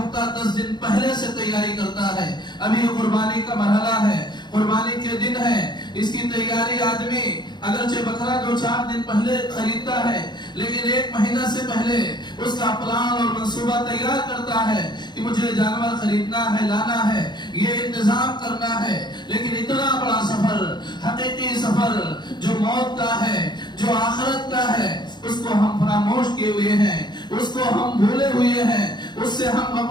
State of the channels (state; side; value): late; right; 0.21 ms